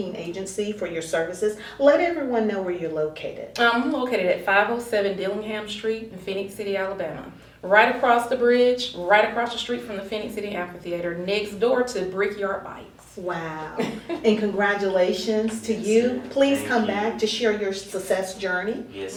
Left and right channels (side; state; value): both; identical; correlation 1.00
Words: Agency, for your services. Let everyone know where you're located. I'm located at 507 Dillingham Street in Phoenix City, Alabama. Right across the bridge, right across the street from the Phoenix City Amphitheater, next door to Brickyard Bikes. Wow. And congratulations to you. Please Thank come you. back to share your success journey.